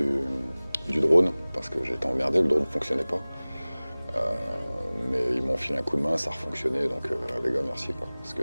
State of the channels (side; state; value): both; inverted; correlation -0.99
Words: drone, parce que j'étais emmerdé, le drone ne fonctionnait pas. Mais ils m'ont filé un coup de main, ça a refonctionné, donc les gars, merci, quoi, parce